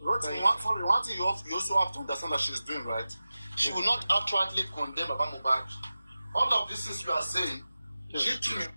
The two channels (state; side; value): inverted; both; correlation -0.95